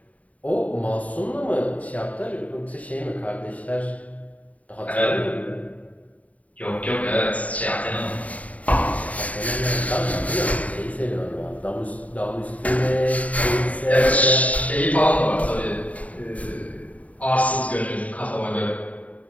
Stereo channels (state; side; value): late; right; 0.069 ms